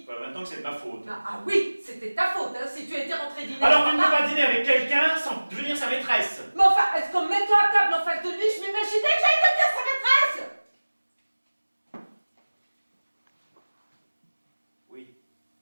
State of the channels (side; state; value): both; inverted; correlation -1.00